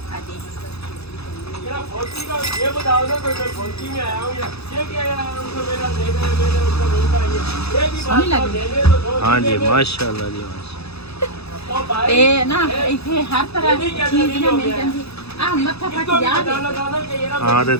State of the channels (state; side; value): late; right; 0.79 ms